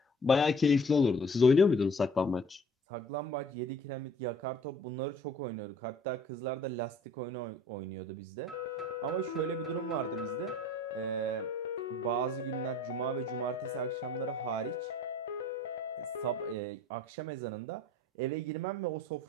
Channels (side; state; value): both; normal; correlation 0.52